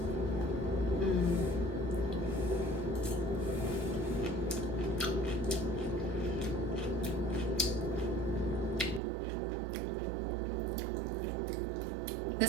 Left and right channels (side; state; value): left; drops out; at 9.0 s